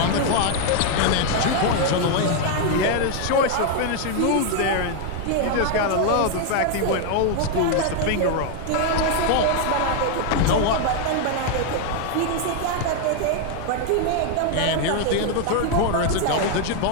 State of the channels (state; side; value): different; both; correlation 0.00